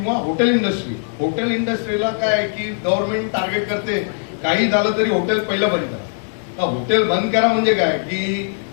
हॉटेल इंडस्ट्रीला काय आहे की गव्हर्नमेंट टार्गेट करते, काही झालं तरी हॉटेल पहिलं बंद करा. हॉटेल बंद करा म्हणजे काय की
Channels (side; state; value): right; silent; digital silence